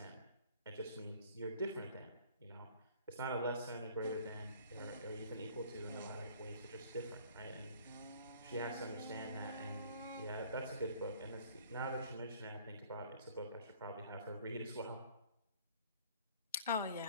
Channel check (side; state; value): both; inverted; correlation -0.54